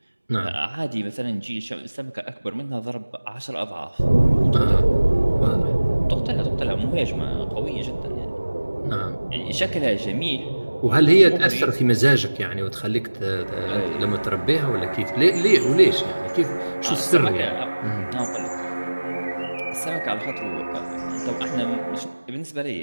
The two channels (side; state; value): both; inverted; correlation -1.00